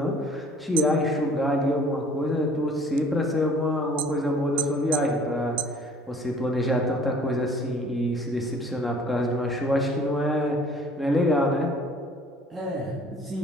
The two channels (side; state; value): both; normal; correlation 0.53